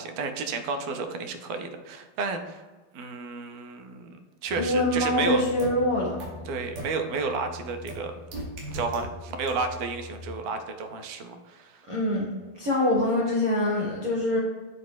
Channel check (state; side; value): late; left; 12 ms